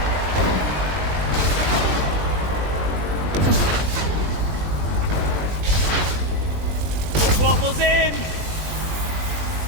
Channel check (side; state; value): left; late; 20 ms